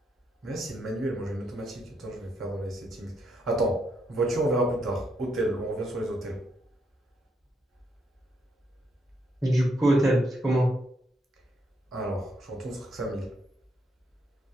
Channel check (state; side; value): normal; both; correlation 0.77